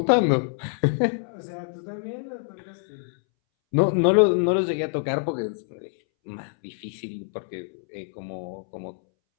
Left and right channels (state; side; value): silent; right; 61 dB below the other